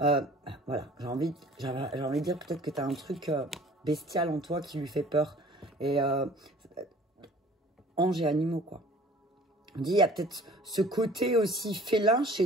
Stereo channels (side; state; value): both; normal; correlation 0.49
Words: j'ai envie de dire peut-être que tu as un truc bestial en toi qui lui fait peur. Et anges et animaux, quoi. On dit, il y a peut-être ce côté aussi félin